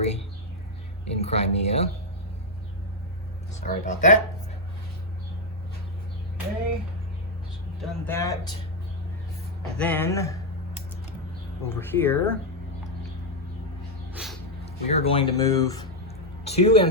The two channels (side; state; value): both; normal; correlation 0.01